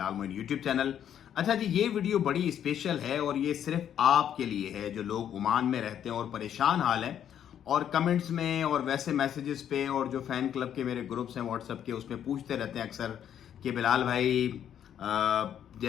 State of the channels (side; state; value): right; quieter; 9.7 dB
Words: मोइन यूट्यूब चैनल। अच्छा जी, ये वीडियो बड़ी स्पेशल है और ये सिर्फ आपके लिए है जो लोग ओमान में रहते हैं और परेशान हाल हैं और कमेंट्स में और वैसे मैसेजेस पे और जो फैन क्लब के मेरे ग्रुप्स हैं व्हाट्सएप के, उसमें पूछते रहते हैं अक्सर कि बिलाल भाई